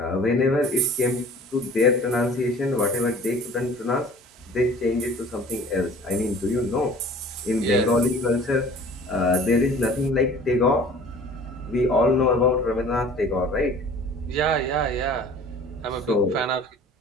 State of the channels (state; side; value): normal; both; correlation 0.46